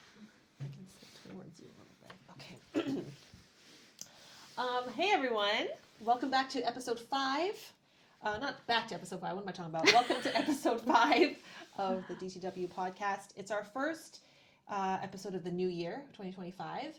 I can sit towards you a little bit. Okay. Hey everyone. Welcome back to episode 5. Not back to episode 5. What am I talking about? Welcome to episode 5 of the DTW podcast. It's our first episode of the new year, 2025.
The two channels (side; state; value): both; identical; correlation 1.00